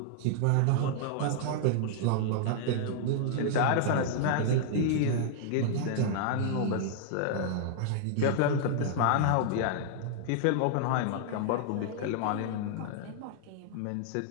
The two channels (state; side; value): different; both; correlation -0.01